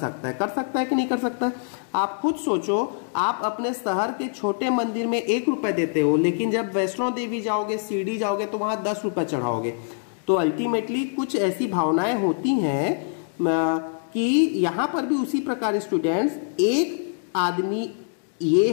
है कि नहीं कर सकता है? आप खुद सोचो, आप अपने शहर के छोटे मंदिर में 1 रुपए देते हो, लेकिन जब वैष्णो देवी जाओगे, शिरडी जाओगे तो वहां 10 रुपए चढ़ाओगे। तो अल्टीमेटली कुछ ऐसी भावनाएं होती हैं कि यहां पर भी उसी प्रकार स्टूडेंट्स, एक आदमी ये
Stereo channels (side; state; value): right; silent; digital silence